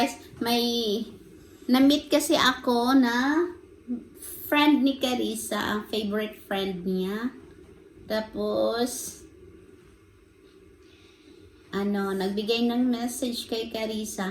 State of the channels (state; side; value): identical; both; correlation 1.00